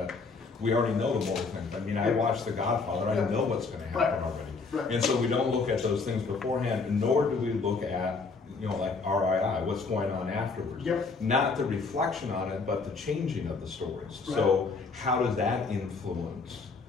we already know the moral things. I mean, I watched The Godfather, I know what's going to happen already. And so we don't look at those things beforehand, nor do we look at, like RII, what's going on afterwards. Not the reflection on it, but the changing of the stories. So how does that influence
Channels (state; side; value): quieter; right; 4.4 dB